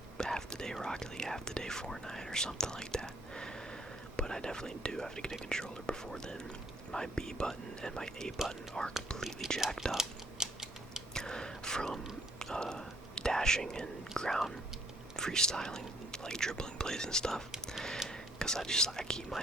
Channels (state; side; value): normal; both; correlation 0.64